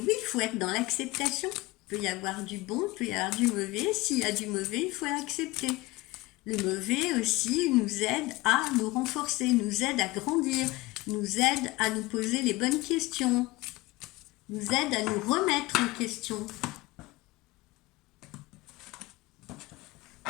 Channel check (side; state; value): right; quieter; 20.6 dB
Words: il faut être dans l'acceptation. Il peut y avoir du bon, il peut y avoir du mauvais. S'il y a du mauvais, il faut l'accepter. Le mauvais aussi nous aide à nous renforcer, nous aide à grandir, nous aide à nous poser les bonnes questions, nous aide à nous remettre en question.